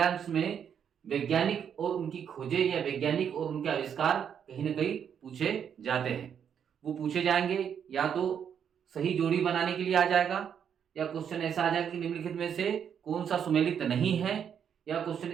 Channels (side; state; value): left; quieter; 8.1 dB